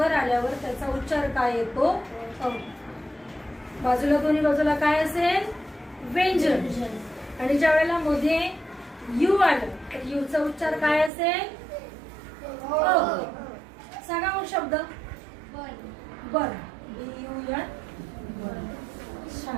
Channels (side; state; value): left; drops out; at 11.1 s